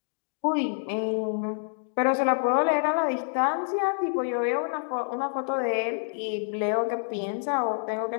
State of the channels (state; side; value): silent; right; digital silence